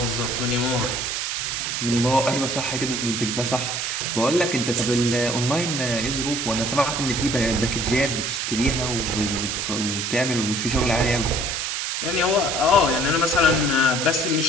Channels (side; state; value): right; noise; hiss, 2 dB below the sound